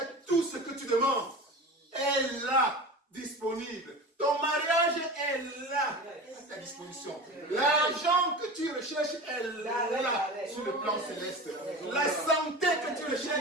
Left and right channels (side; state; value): both; normal; correlation 0.32